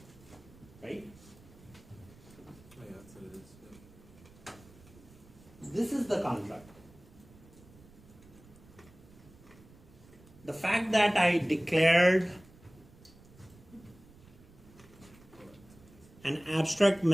Right? Oh yeah, that's what it is. Yeah. This is the contract. The fact that I declared an abstract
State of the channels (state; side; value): noise; right; rumble, 23 dB below the sound